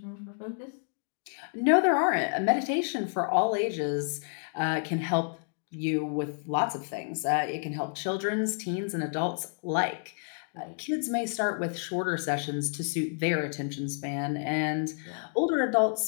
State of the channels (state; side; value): silent; right; 58 dB below the other